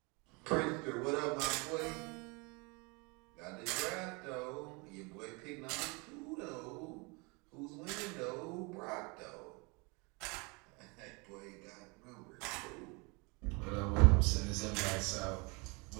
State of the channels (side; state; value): left; quieter; 29.3 dB